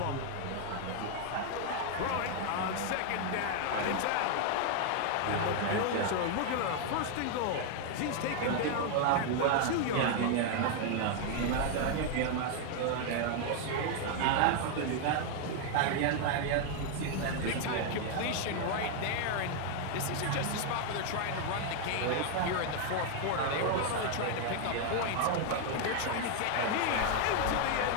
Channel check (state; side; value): different; both; correlation 0.00